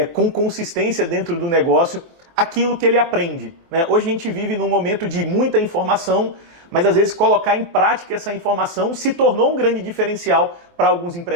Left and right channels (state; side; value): late; left; 24 ms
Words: com consistência dentro do negócio aquilo que ele aprende, né? Hoje a gente vive num momento de muita informação, mas às vezes colocar em prática essa informação se tornou um grande diferencial para alguns